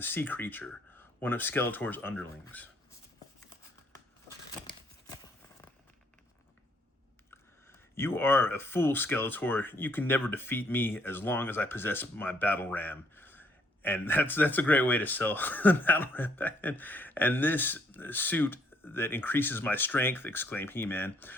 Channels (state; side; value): normal; both; correlation 0.67